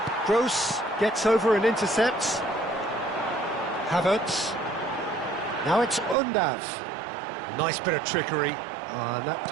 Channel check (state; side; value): drops out; left; at 6.2 s